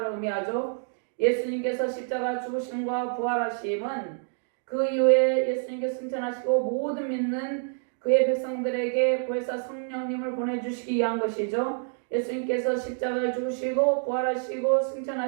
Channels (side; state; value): left; silent; 60 dB below the other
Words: 의미하죠. 예수님께서 십자가 죽으심과 부활하심은 그 이후에 예수님께서 승천하시고 모든 믿는 그의 백성들에게 보혜사 성령님을 보내주시기 위한 것이죠. 예수님께서 십자가에 죽으시고 부활하시고